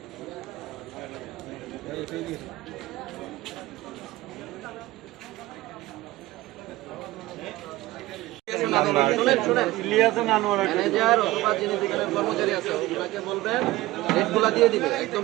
ম্যানেজার অথবা যিনি দোকানের কর্মচারী আছে ওনাকে বলবেন রেটগুলা দিয়ে দিবে একদম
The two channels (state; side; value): quieter; left; 17.9 dB